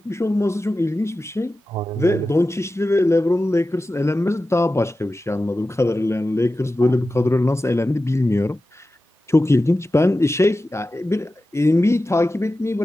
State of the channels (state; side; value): normal; both; correlation 0.94